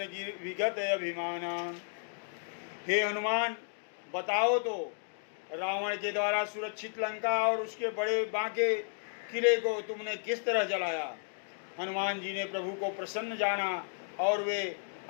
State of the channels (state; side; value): silent; right; digital silence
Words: विगत अभिमाना। हे हनुमान बताओ तो रावण के द्वारा सुरक्षित लंका और उसके बड़े बांके किले को तुमने किस तरह जलाया। हनुमान जी ने प्रभु को प्रसन्न जाना और वे